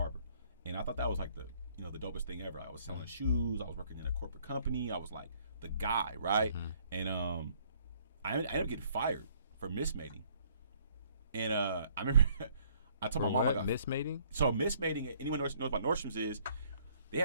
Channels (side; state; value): both; inverted; correlation -0.63